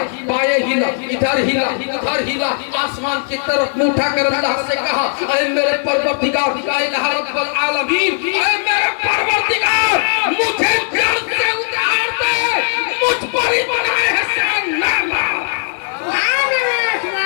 بائیں ہلا, ادھر ہلا ادھر ہلا, آسمان کی طرف منہ اٹھا کر اللہ سے کہا, اے میرے پروردگار, اے الہ رب العالمین, اے میرے پروردگار, مجھے جڑ سے اتار دے, مجھ پر ہی بنا احسان نہ لا,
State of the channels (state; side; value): silent; right; digital silence